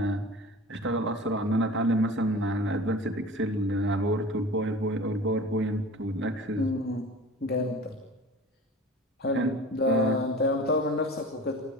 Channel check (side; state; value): both; normal; correlation 0.38